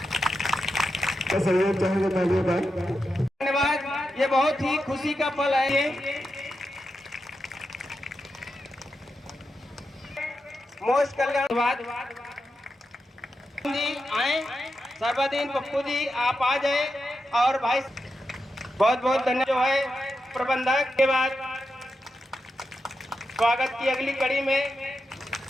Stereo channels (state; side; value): normal; both; correlation 0.88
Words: धन्यवाद, ये बहुत ही खुशी का पल है। ये मोस्ट कल्याणवाद जी आए, सर्वदीन पप्पू जी आप आ जाए और भाई बहुत बहुत धन्यवाद जो है प्रबंधक के बाद स्वागत की अगली कड़ी में